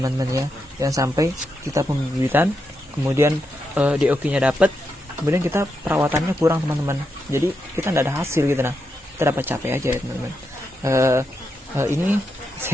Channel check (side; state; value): both; normal; correlation 0.84